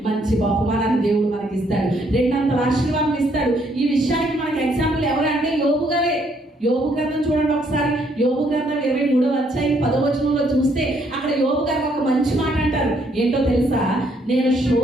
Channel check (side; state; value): both; normal; correlation 0.69